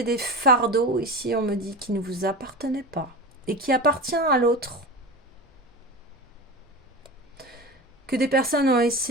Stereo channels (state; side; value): normal; both; correlation 0.28